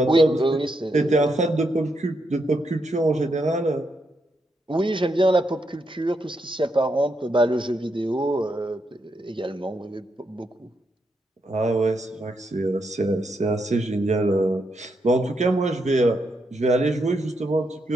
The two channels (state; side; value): normal; both; correlation 0.81